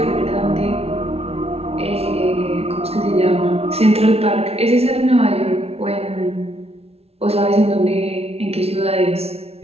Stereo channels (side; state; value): left; late; 0.30 ms